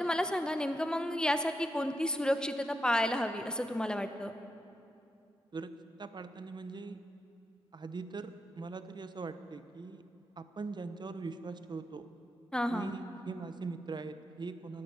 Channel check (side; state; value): both; normal; correlation 0.84